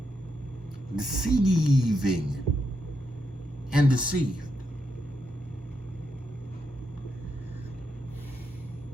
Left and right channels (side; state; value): both; normal; correlation 0.82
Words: Deceiving and deceived.